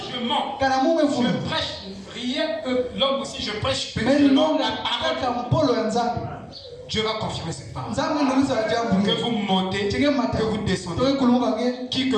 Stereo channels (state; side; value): identical; both; correlation 1.00